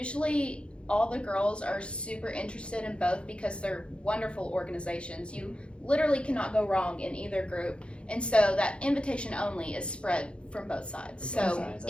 all the girls are super interested in both because they're wonderful organizations. You literally cannot go wrong in either group. And so that invitation only is spread from both sides. From both So sides,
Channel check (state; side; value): late; right; 0.058 ms